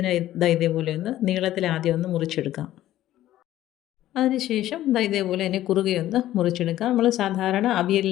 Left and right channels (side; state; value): right; quieter; 13.7 dB